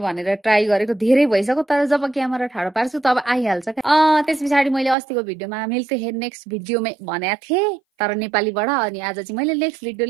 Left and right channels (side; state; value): left; drops out; at 5.0 s